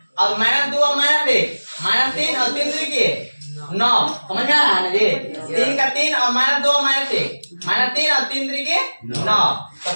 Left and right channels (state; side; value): inverted; both; correlation -1.00